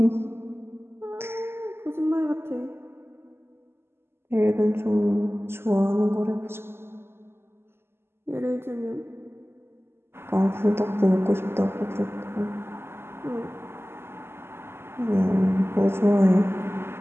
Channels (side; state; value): left; late; 0.12 ms